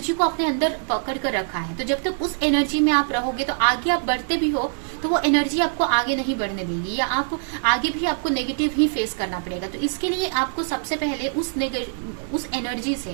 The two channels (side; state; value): left; silent; 63 dB below the other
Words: को अपने अंदर पकड़ कर रखा है। तो जब तक उस एनर्जी में आप रहोगे तो आगे आप बढ़ते भी हो तो वो एनर्जी आपको आगे नहीं बढ़ने देगी, या आप आगे भी आपको नेगेटिव ही फेस करना पड़ेगा। तो इसके लिए आपको सबसे पहले उस एनर्जी